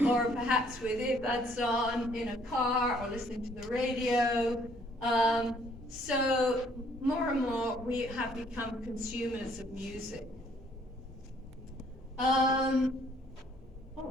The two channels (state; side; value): normal; both; correlation 0.63